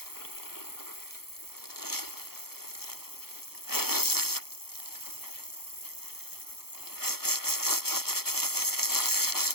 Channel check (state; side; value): late; right; 0.95 ms